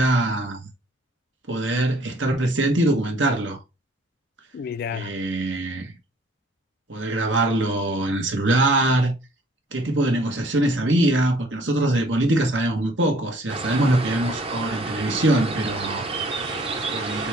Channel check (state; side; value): normal; both; correlation 0.57